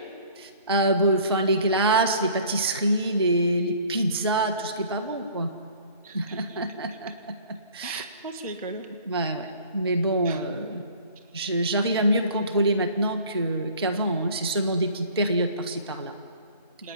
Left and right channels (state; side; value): inverted; both; correlation -0.50